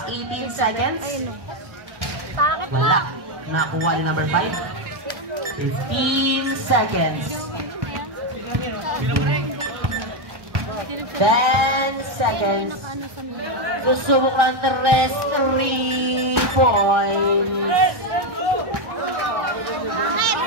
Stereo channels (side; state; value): left; late; 1.1 ms